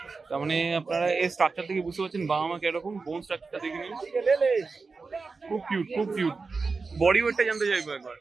তার মানে আপনারা এই স্ট্রাকচার থেকে বুঝতে পারছেন বাবা মা কিরকম। বোন স্ট্রাকচারটা দেখে নিন, খুব কিউট, খুব কিউট। বডি ওয়েটটা জানতে চাইবো একবার।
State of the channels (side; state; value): left; quieter; 4.4 dB